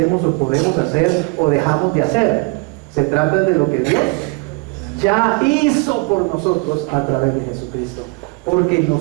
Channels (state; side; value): quieter; left; 29.5 dB